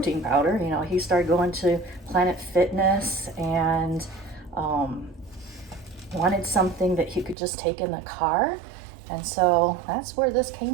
powder. You know, he started going to Planet Fitness and wanted something that he could just take in the car. And so that's where this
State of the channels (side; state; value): left; drops out; at 7.4 s